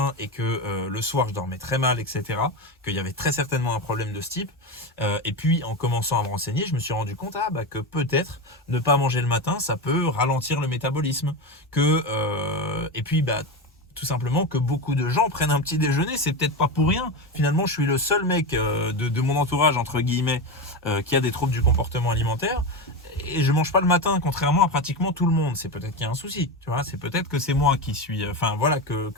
et que le soir, je dormais très mal, etc. Qu'il y avait très certainement un problème de ce type. Et puis, en commençant à me renseigner, je me suis rendu compte que peut-être ne pas manger le matin, ça peut ralentir le métabolisme. Et puis, tout simplement que beaucoup de gens prennent un petit déjeuner, c'est peut-être pas pour rien. Finalement, je suis le seul mec de mon entourage, entre guillemets, qui a des troubles du comportement alimentaire. Et je mange pas le matin, contrairement à pratiquement tout le monde. C'est peut-être qu'il y a un souci, tu vois. C'est peut-être que c'est moi qui suis,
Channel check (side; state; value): both; normal; correlation 0.18